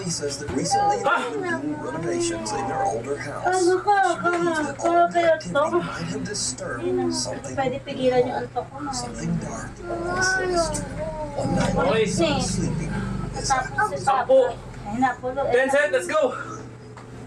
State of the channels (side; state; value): both; identical; correlation 1.00